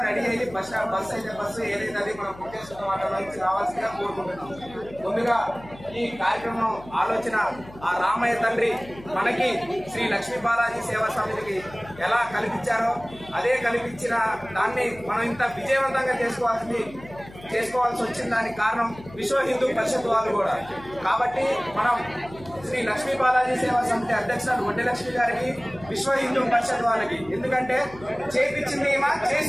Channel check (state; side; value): noise; left; hum, 19 dB below the sound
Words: రెడీ అయ్యి బస్సు ఏదైతే అది మనం పుట్టేసుకున్న వాటిలో నుంచి రావాల్సిందిగా కోరుకుంటున్నాం. ముందుగా ఈ కార్యక్రమం ఆలోచన ఆ రామయ్య తండ్రి మనకి శ్రీ లక్ష్మీ బాలాజీ సేవా సమితికి ఎలా కల్పించారో అదే కల్పించిన దాన్ని మనం ఇంత విజయవంతంగా చేసుకోవాల్సి వచ్చిన దానికి కారణం విశ్వ హిందూ పరిషత్ వాళ్ళు కూడా. కాబట్టి మనం శ్రీ లక్ష్మీ బాలాజీ సేవా సమితి అధ్యక్షురాలు వడ్డీ లక్ష్మి గారికి, విశ్వ హిందూ పరిషత్ వాళ్ళకి. ఎందుకంటే చేపించింది ఏమా